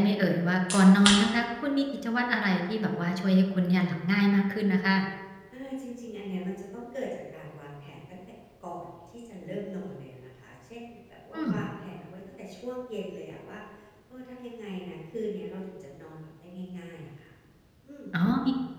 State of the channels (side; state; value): both; identical; correlation 1.00